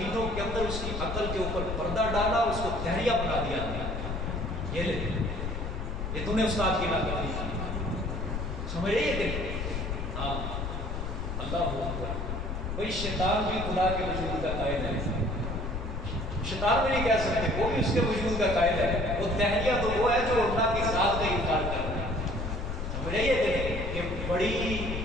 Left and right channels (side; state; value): left; noise; rumble, 4 dB below the sound